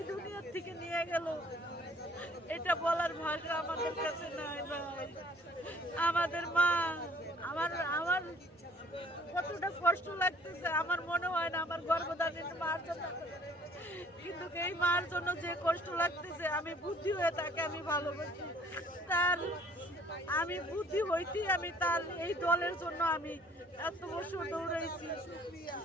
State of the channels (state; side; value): normal; both; correlation 0.56